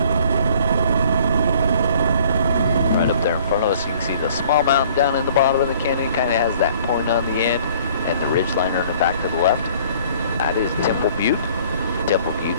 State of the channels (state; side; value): inverted; both; correlation -0.56